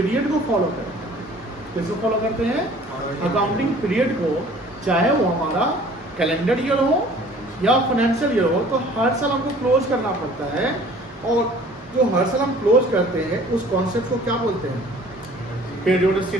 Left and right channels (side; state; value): both; normal; correlation 0.51